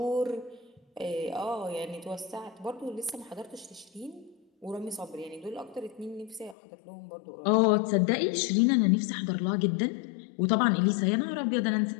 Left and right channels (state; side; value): drops out; right; at 6.6 s